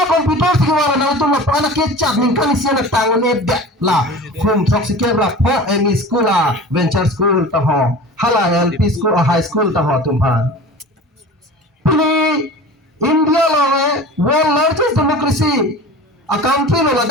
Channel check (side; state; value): both; normal; correlation 0.38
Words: komputer kewan mana itu lah pana kecap lingkan isi yang tangan edda lah. Kum sok sikit lah po emi school venture school taho. Hala LP school high school tahu tumpah. Ini India loh, world largest democracy. A country loh,